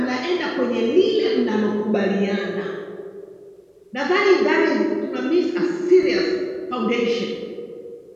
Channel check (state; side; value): identical; both; correlation 1.00